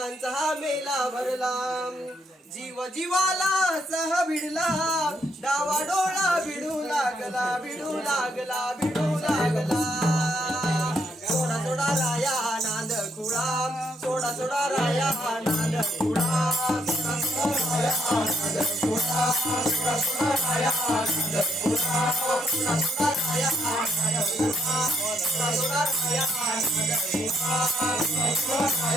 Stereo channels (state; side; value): normal; both; correlation 0.73